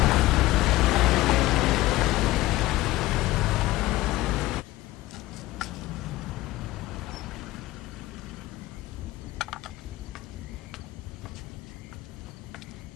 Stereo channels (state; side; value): quieter; right; 17.7 dB